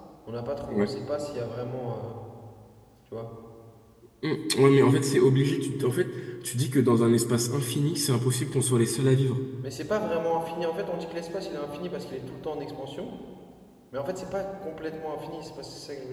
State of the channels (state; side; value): identical; both; correlation 1.00